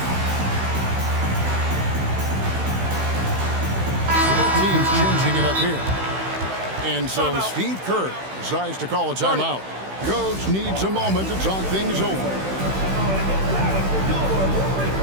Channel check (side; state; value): left; late; 16 ms